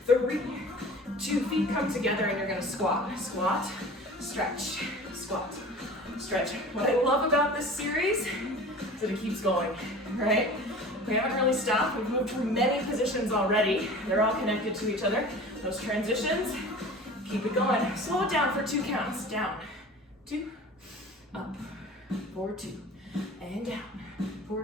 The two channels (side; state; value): both; normal; correlation 0.40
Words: 3, 2. Feet come together and you're gonna squat. Squat, stretch, squat, stretch. What I love about this series is that it keeps going, right? We haven't really stopped. We've moved through many positions already. They're all connected to each other. Those transitions, keep it going. Slow it down for 2 counts. Down, 2, up, 4, 2, and down,